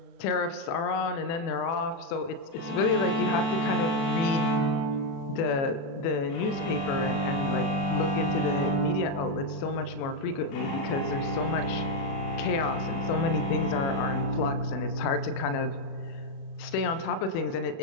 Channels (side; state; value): right; late; 36 ms